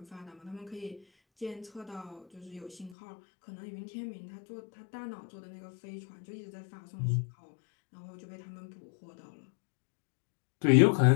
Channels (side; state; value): right; drops out; at 3.0 s